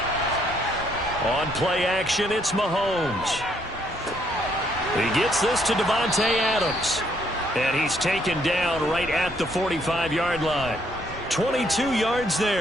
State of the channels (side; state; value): both; normal; correlation 0.70